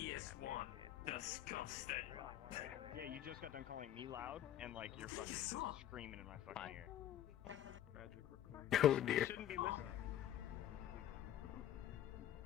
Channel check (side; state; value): right; quieter; 11.6 dB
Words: Disgusting. Yeah, you just got done calling me loud, and like you're fucking screaming in my fucking ear. Oh dear. Shouldn't be listening.